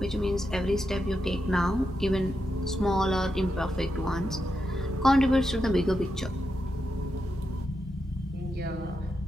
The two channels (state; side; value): normal; both; correlation 0.86